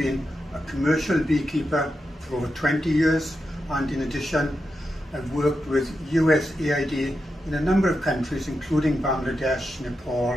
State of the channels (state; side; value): normal; both; correlation 0.87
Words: a commercial beekeeper for over 20 years, and in addition I've worked with USAID in a number of countries including Bangladesh, Nepal,